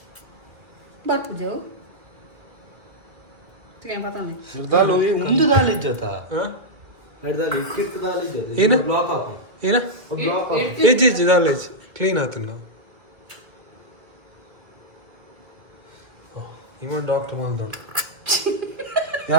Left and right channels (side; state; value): left; late; 1.8 ms